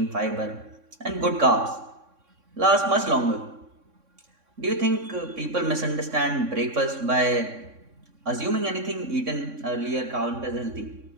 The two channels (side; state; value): left; late; 3.6 ms